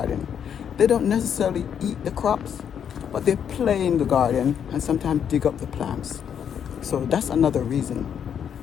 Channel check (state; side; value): quieter; right; 8.3 dB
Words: They don't necessarily eat the crops, but they play in the garden and sometimes dig up the plants. So that's another reason